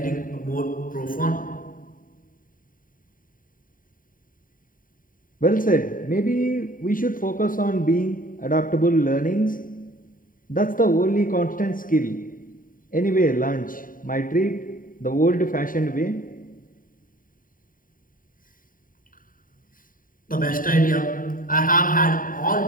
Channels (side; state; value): right; late; 0.40 ms